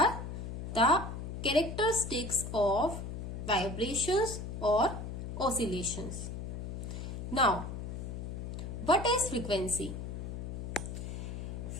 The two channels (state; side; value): noise; left; hum, 6 dB below the sound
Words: the characteristics of vibrations or oscillations. Now, what is frequency?